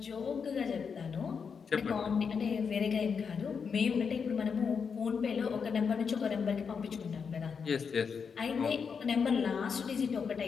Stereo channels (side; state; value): right; quieter; 6.1 dB